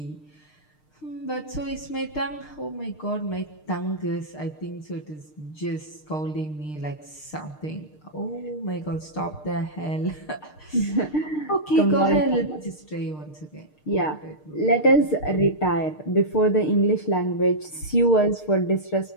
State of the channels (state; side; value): late; right; 6.6 ms